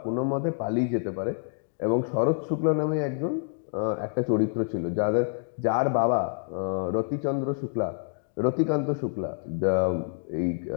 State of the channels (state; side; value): silent; right; digital silence